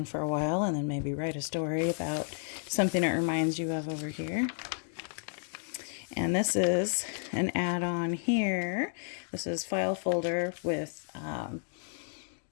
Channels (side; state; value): right; silent; 56 dB below the other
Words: for a while and then maybe write a story about something it reminds you of over here. And this is an add-on here. This is file folder with